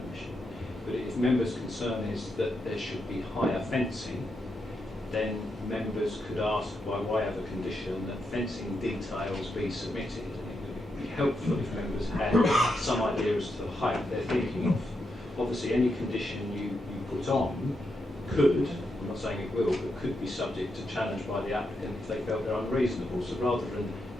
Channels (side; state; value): both; normal; correlation 0.83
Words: permission. But if members' concern is that there should be higher fencing, then members could ask by way of a condition that fencing details be submitted. And it would be helpful if members had some idea as to the height they're thinking of. Obviously, any condition you put on could, I'm not saying it will, but could be subject to challenge by the applicant if they felt they're unreasonable. So rather than